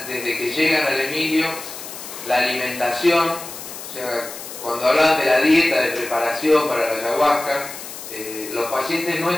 desde que llegan al Emilio, la alimentación, o sea, cuando hablaban de la dieta de preparación para la ayahuasca, los pacientes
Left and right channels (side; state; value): left; noise; hiss, 11 dB below the sound